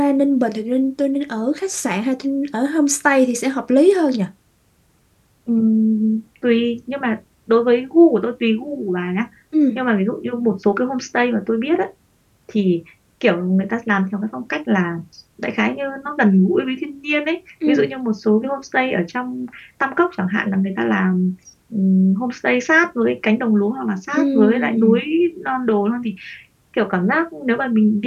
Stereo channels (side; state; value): both; identical; correlation 1.00